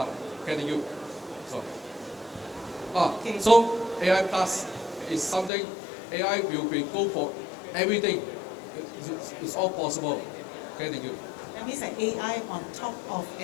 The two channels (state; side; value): drops out; right; at 5.5 s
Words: Thank you. So AI Plus is something, AI will be go for everything. It's all possible. Okay, thank you. That means that AI on top of